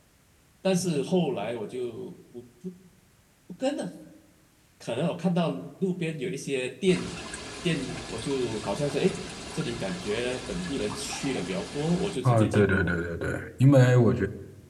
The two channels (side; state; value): both; identical; correlation 1.00